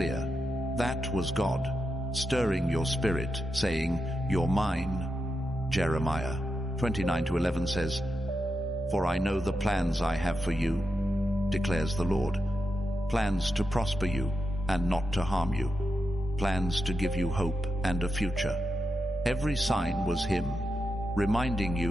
That was God, stirring your spirit, saying, you're mine. Jeremiah 29:11 says, for I know the plans I have for you, declares the Lord. Plans to prosper you and not to harm you. Plans to give you hope and a future. Every sign was Him, reminding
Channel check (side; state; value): both; normal; correlation 0.88